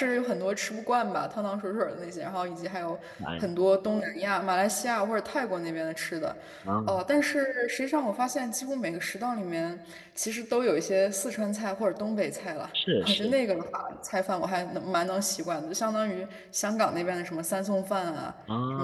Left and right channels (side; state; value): both; identical; correlation 1.00